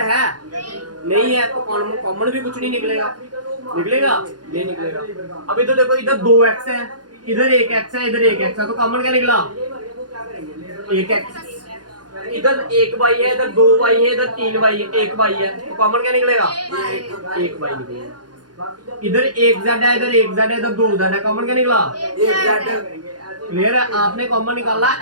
नहीं है तो कॉमन भी कुछ नहीं निकलेगा नहीं निकलेगा। अब इधर देखो इधर 2x है, इधर 1x है, इधर 1x है तो कॉमन क्या निकला 1x। इधर 1y है, इधर 2y है, इधर 3y है, 1y है तो कॉमन क्या निकलेगा 1y निकलेगा। इधर 1z है, इधर 1z है, इधर 2z है, कॉमन क्या निकला 1z। क्लियर है। आपने कॉमन निकाला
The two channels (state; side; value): late; left; 0.69 ms